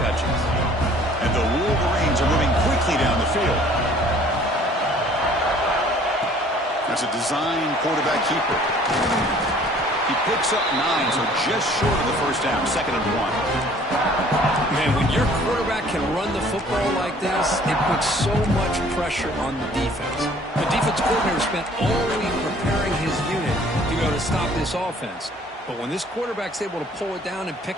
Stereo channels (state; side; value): normal; both; correlation 0.55